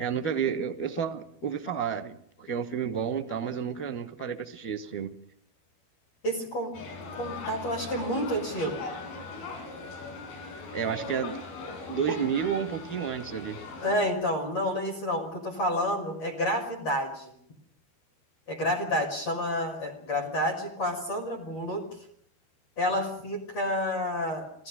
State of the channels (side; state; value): right; late; 12 ms